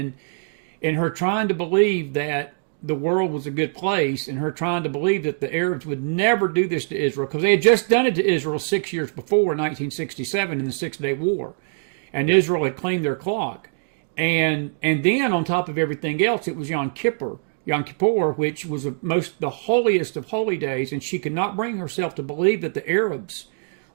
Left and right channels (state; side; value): silent; left; digital silence